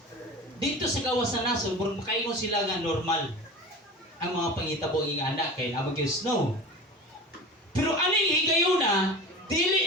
Dito sa gawas sa nasod, murag makaingon sila nga normal ang mga pangitabo ng anak kay namang yung snow. Pero aning higayuna,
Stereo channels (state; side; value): normal; both; correlation 0.34